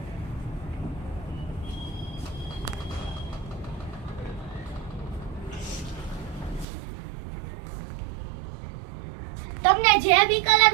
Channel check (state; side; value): drops out; left; at 6.7 s